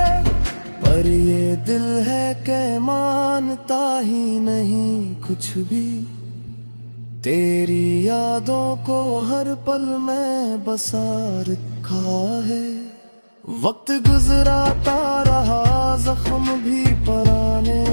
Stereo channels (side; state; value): both; inverted; correlation -1.00